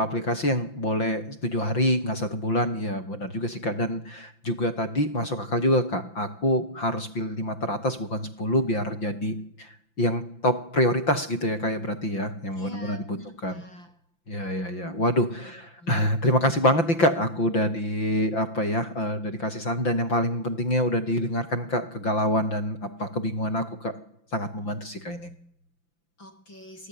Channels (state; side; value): late; right; 5.9 ms